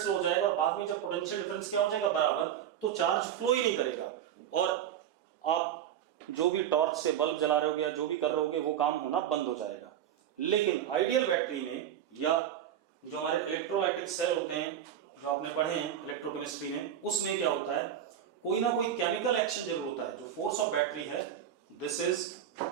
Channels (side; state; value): left; quieter; 10.0 dB